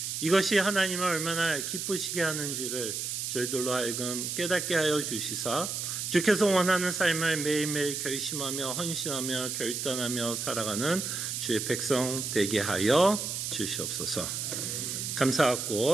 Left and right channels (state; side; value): noise; right; hiss, 3 dB below the sound